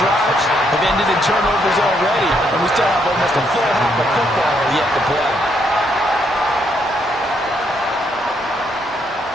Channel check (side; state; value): both; normal; correlation 0.74